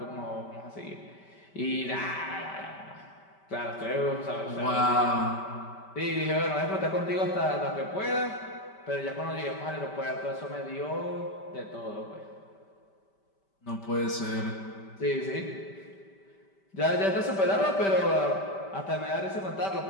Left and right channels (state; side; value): late; right; 5.1 ms